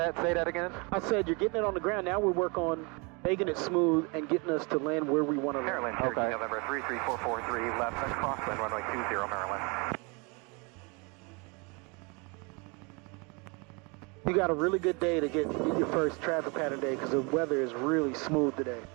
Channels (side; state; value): left; quieter; 30.6 dB